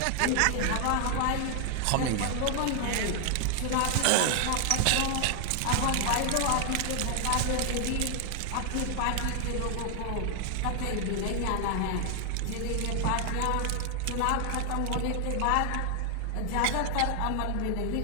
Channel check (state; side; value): different; both; correlation 0.00